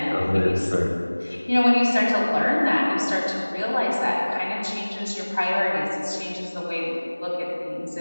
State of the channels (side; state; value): both; inverted; correlation -1.00